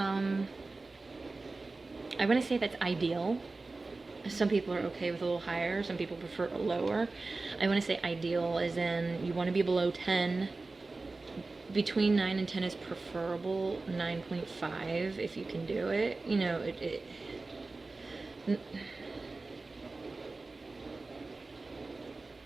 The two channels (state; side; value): quieter; left; 3.5 dB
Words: want to say that's ideal. Some people are okay with a little higher, some people prefer a lower. I want to say ideal as in you want to be below 10. Between 9 and 10 is preferable. 9.5 if you can do it.